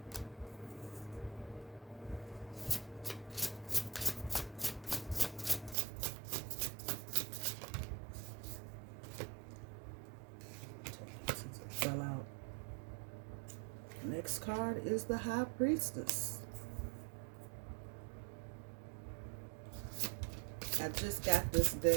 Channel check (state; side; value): drops out; left; at 5.8 s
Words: Fell out. Next card is the High Priestess. I just got this